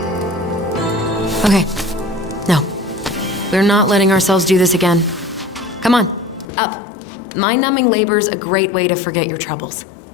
Okay. No. We're not letting ourselves do this again. Come on. Up. Mind-numbing labor's a great way to forget your troubles.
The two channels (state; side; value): drops out; right; at 6.5 s